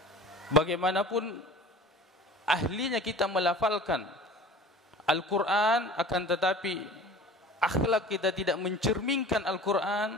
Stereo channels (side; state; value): both; normal; correlation 0.41